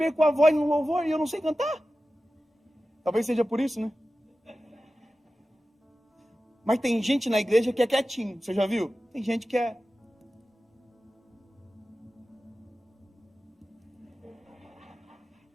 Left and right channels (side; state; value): both; normal; correlation 0.94